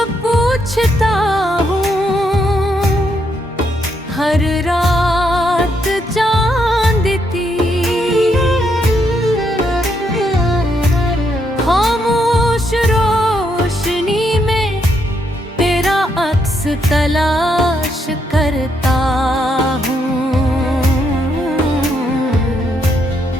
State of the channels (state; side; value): normal; both; correlation 0.76